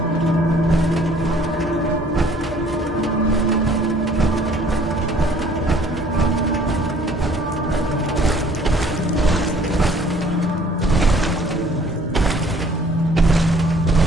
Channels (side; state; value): both; normal; correlation 0.56